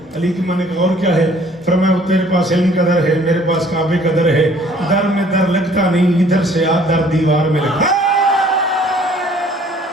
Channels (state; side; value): normal; both; correlation 0.57